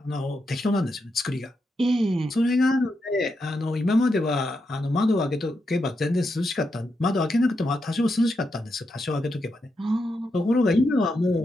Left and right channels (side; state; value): both; normal; correlation 0.84